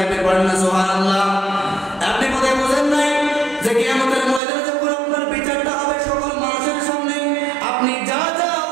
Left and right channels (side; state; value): left; drops out; at 4.4 s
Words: বলেন না সুবহানাল্লাহ। আপনি বোধহয় বুঝেন নাই যে কিয়ামতের ময়দানে যখন আপনার বিচারটা হবে সকল মানুষের সামনে, আপনি যা যা